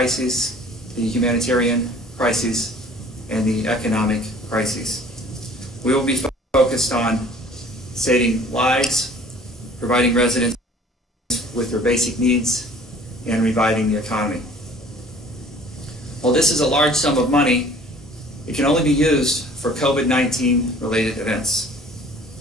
the humanitarian crisis, and the economic crisis. We will be focused on saving lives, providing residents with their basic needs, and reviving the economy. While this is a large sum of money, it can only be used for COVID-19 related events.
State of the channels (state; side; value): normal; both; correlation 0.50